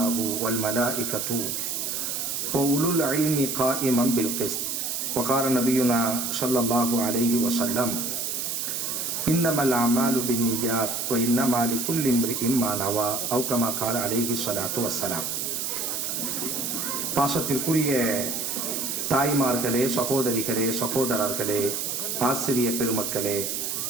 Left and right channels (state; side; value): noise; right; hiss, 2 dB below the sound